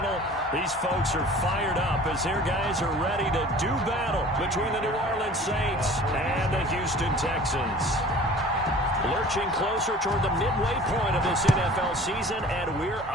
These folks are fired up as their guys are ready to do battle between the New Orleans Saints and the Houston Texans. Lurching closer toward the midway point of this NFL season, and we're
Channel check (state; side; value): normal; both; correlation 0.45